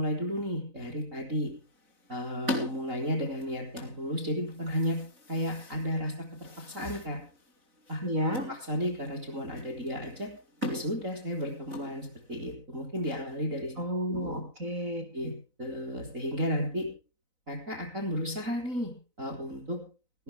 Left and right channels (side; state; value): left; late; 4.0 ms